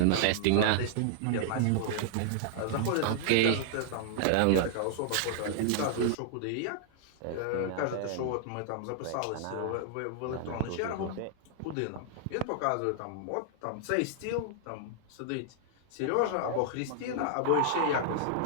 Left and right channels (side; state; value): both; different; correlation -0.01